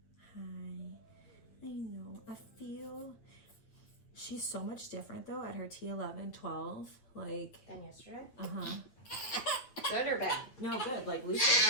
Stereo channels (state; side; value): late; right; 8.9 ms